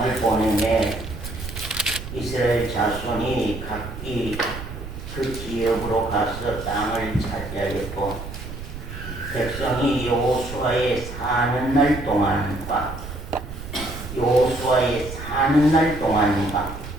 보내매 이스라엘 자손이 각기 그 지역으로 가서 땅을 차지하였고, 백성이 여호수아의 사는 날 동안과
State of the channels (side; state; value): right; noise; rumble, 10 dB below the sound